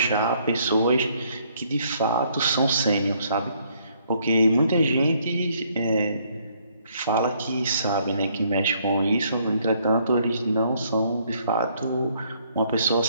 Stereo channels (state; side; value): inverted; both; correlation -0.67